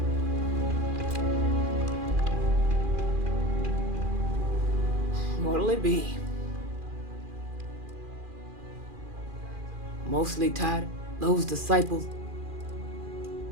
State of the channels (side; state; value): left; late; 2.4 ms